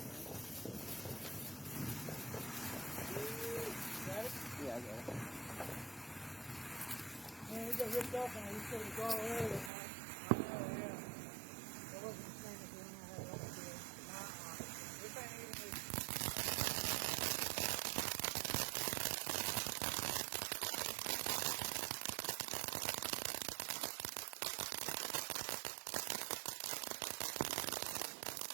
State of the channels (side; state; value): left; drops out; at 9.7 s